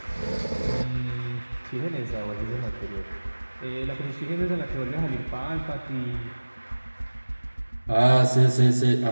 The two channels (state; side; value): inverted; both; correlation -1.00